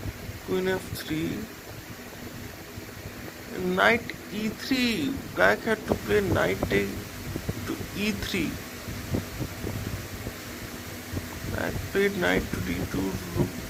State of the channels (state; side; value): identical; both; correlation 1.00